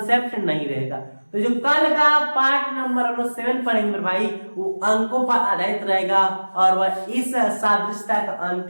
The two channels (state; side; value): inverted; both; correlation -1.00